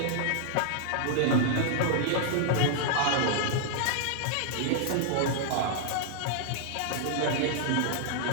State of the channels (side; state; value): both; different; correlation -0.01